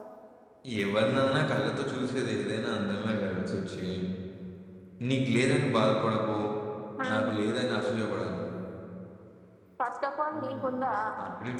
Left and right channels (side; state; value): both; identical; correlation 1.00